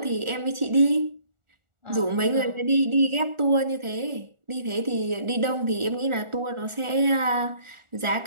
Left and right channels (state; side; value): late; left; 1.4 ms